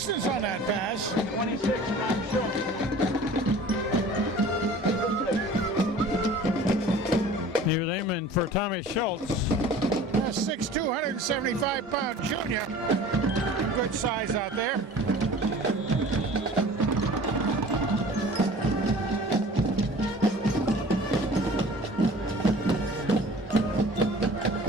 on that pass. 26, Tom Schultz. He was aiming for Tommy Schultz. 6'2", 175-pound junior. Good size out there.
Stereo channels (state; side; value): normal; both; correlation 0.44